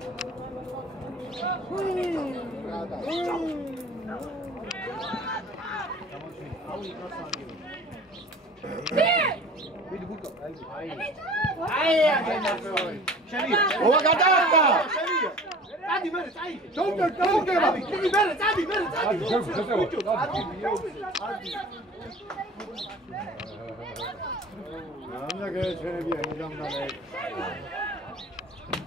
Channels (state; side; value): normal; both; correlation 0.43